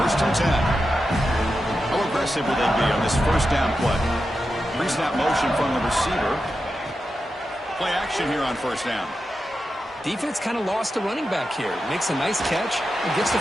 1st and 10. How aggressive will they be on this first down play? Pre-snap motion from the receiver. Play action here on first down. Defense kind of lost the running back here. Makes a nice catch and gets the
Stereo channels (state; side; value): normal; both; correlation 0.89